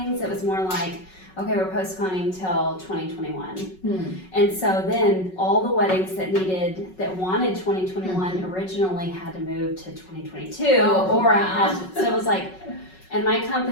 It was more like, okay, we're postponing till 2021. And so then all the weddings that wanted 2021 originally had to move to 2022, so it was like. And my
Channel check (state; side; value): late; right; 5.4 ms